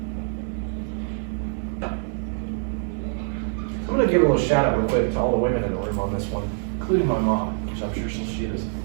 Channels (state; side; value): silent; left; 55 dB below the other